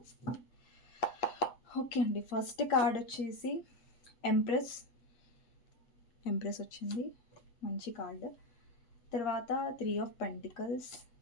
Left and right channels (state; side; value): late; right; 8.1 ms